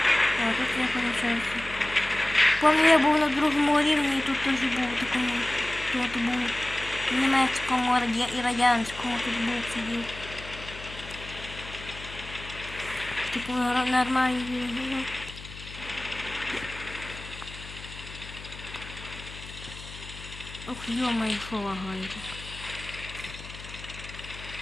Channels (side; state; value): left; noise; hum, 14 dB below the sound